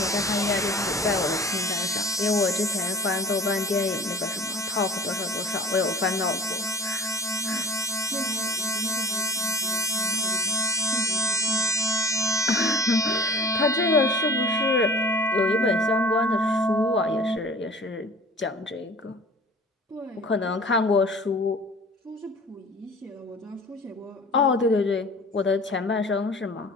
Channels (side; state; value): both; normal; correlation 0.44